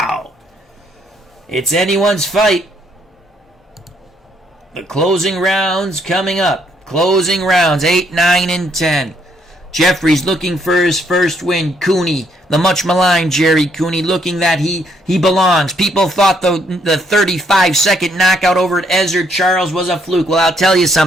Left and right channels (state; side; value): normal; both; correlation 0.70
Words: It's anyone's fight. The closing rounds coming up. Closing rounds, 8, 9, and 10. Jeffries looking for his first win. Cooney, the much maligned Gerry Cooney, looking that he belongs. People thought the 35-second knockout over at Ezzard Charles was a fluke. Well, I'll tell you